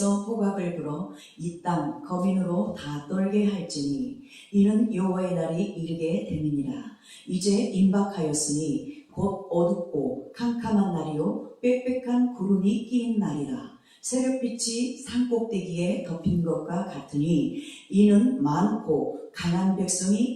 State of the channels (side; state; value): both; identical; correlation 1.00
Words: 호각을 불어 이 땅 거민으로 다 떨게 할지니 이는 여호와의 날이 이르게 됨이니라. 이제 임박하였으니 곧 어둡고 캄캄한 날이요 빽빽한 구름이 끼인 날이라. 새벽빛이 산꼭대기에 덮인 것과 같으니 이는 많고 강한 백성이